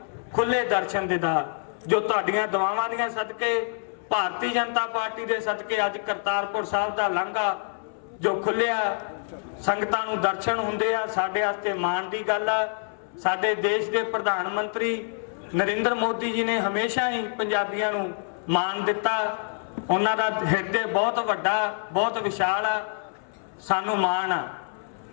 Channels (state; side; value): silent; right; 61 dB below the other